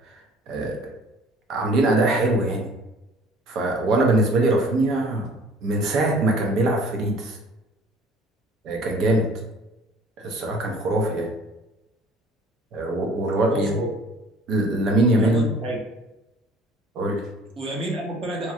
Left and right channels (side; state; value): both; normal; correlation 0.52